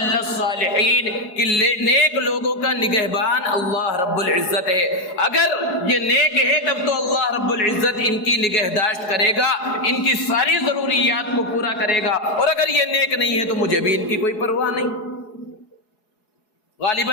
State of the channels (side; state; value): right; late; 4.7 ms